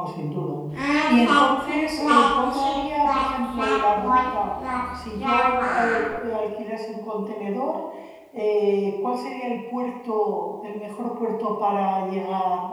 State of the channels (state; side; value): identical; both; correlation 1.00